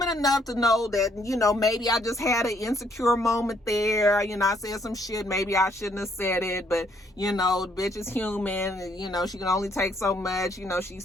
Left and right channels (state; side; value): normal; both; correlation 0.68